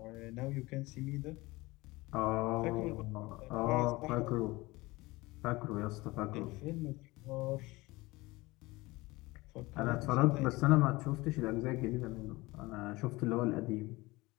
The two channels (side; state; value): right; quieter; 21.5 dB